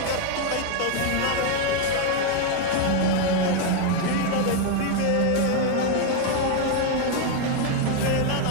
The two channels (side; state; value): both; different; correlation 0.01